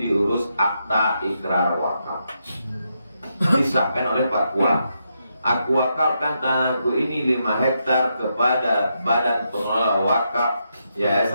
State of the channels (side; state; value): both; inverted; correlation -0.82